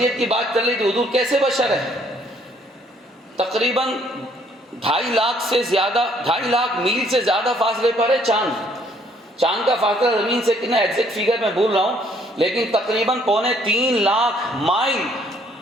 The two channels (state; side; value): normal; both; correlation 0.64